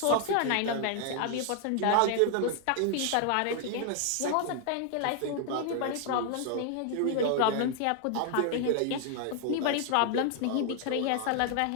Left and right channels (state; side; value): different; both; correlation 0.00